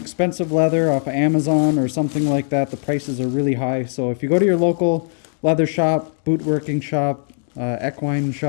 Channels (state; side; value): silent; right; digital silence